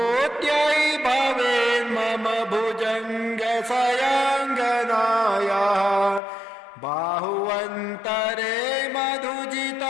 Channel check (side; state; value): right; drops out; at 6.2 s